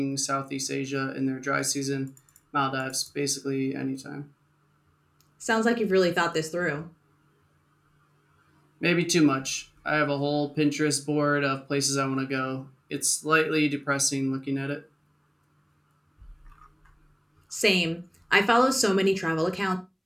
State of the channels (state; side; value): identical; both; correlation 1.00